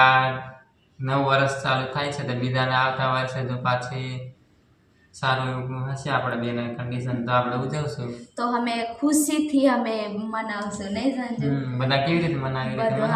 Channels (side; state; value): both; identical; correlation 1.00